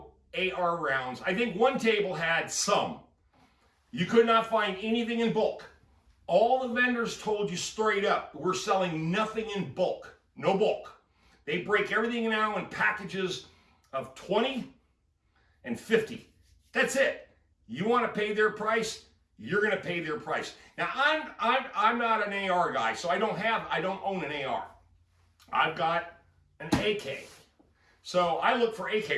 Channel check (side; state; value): both; identical; correlation 1.00